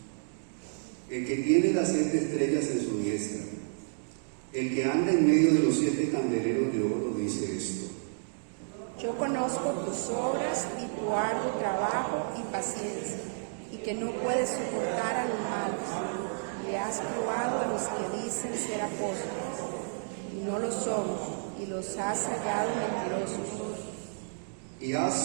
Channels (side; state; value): left; silent; digital silence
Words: el que tiene las 7 estrellas en su diestra, el que anda en medio de los 7 candeleros de oro, dice esto: Yo conozco tus obras y tu arduo trabajo y paciencia, y que no puedes soportar a los malos. Le has probado a los que dicen ser apóstoles, y no lo son, y los has hallado mentirosos. Y